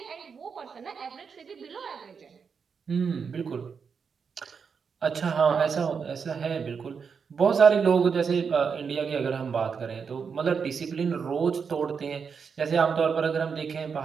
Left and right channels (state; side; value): quieter; left; 6.0 dB